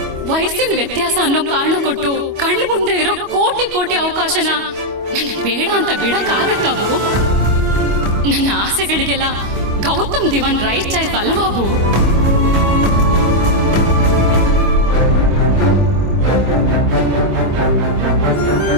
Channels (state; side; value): late; left; 25 ms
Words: ವಯಸ್ಸಿನ ವ್ಯತ್ಯಾಸ ಅನ್ನೋ ಕಾರಣ ಕೊಟ್ಟು ಕಣ್ಣು ಮುಂದೆ ಇರೋ ಕೋಟಿ ಕೋಟಿ ಅವಕಾಶನ ನನಗ್ ಬೇಡ ಅಂತ ಬಿಡಕ್ಕಾಗತ್ತವು? ನನ್ನ ಆಸೆಗಳಿಗೆಲ್ಲ ಗೌತಮ್ ದಿವಾನ್ ರೈಟ್ ಚಾಯ್ಸ್ ಅಲ್ವಾಬು?